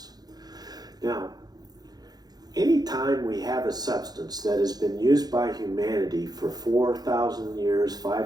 Now, anytime we have a substance that has been used by humanity for 4,000 years,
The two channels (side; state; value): left; late; 0.19 ms